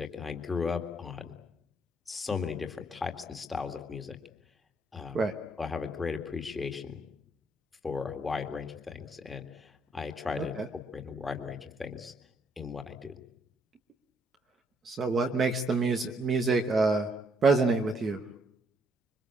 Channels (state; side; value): normal; both; correlation 0.70